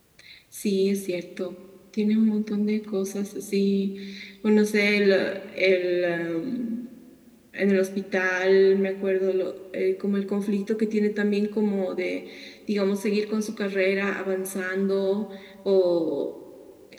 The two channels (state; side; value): identical; both; correlation 1.00